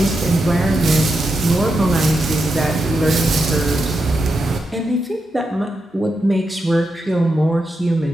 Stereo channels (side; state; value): both; normal; correlation 0.86